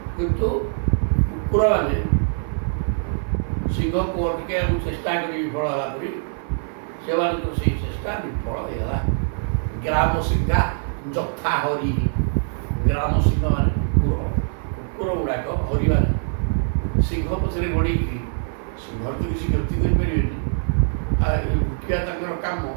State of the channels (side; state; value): left; silent; 55 dB below the other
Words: କିନ୍ତୁ କୁକୁରମାନେ ସିଂହକୁ ଅଟକାଇବାକୁ ଚେଷ୍ଟା କରି ବିଫଳ ହେଲା ପରି ସେମାନଙ୍କର ସେଇ ଚେଷ୍ଟା ବିଫଳ ହେଇଗଲା। ଗ୍ରାମ ସିଂହା ଯଥା ହରି। ଗ୍ରାମ ସିଂହ ମାନେ କୁକୁର ଗୁଡ଼ାକ, ହରିମାନେ ସିଂହ ପଛରେ ଗୋଡ଼େଇକିରି, ସିଂହର ତ କିଛି କ୍ଷତି କରିପାରିବେନି, ଭୁକିବା ତାଙ୍କର କାମ।